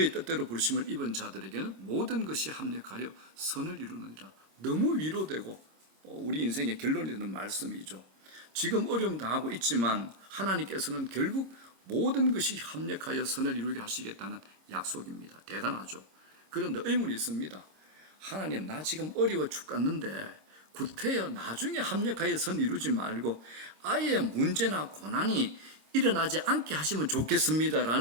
뜻대로 부르심을 입은 자들에게는 모든 것이 합력하여 선을 이루느니라. 너무 위로되고 우리 인생의 결론이 되는 말씀이죠. 지금 어려움 당하고 있지만 하나님께서는 결국 모든 것이 합력하여 선을 이루게 하시겠다는 약속입니다. 대단하죠. 그런데 의문이 있습니다. 하나님, 나 지금 어려워 죽겠는데 구태여 나중에 합력하여 선 이루지 말고 아예 문제나 고난이 일어나지 않게 하시면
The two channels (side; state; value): left; late; 26 ms